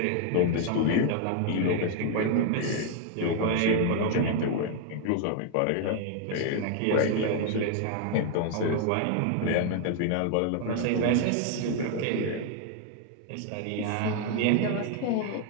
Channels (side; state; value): both; different; correlation 0.00